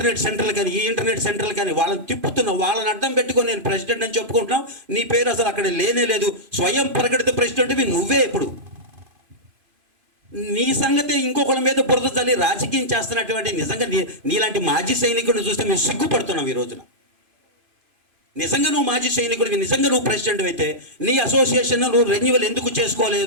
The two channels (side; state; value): left; late; 3.0 ms